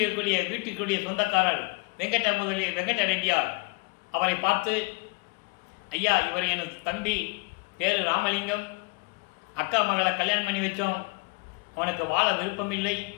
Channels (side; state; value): right; quieter; 30.6 dB